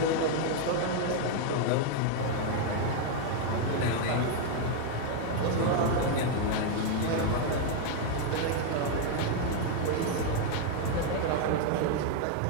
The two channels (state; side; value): different; both; correlation 0.01